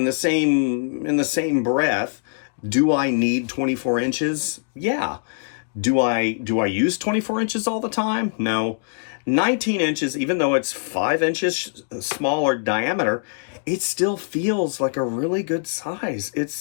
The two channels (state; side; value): silent; right; digital silence